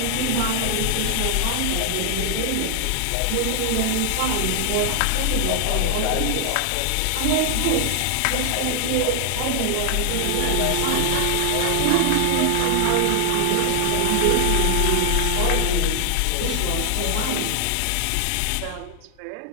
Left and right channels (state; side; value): different; both; correlation 0.00